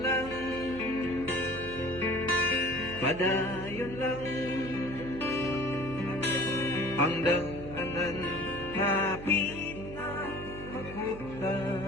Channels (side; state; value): right; noise; hum, 12 dB below the sound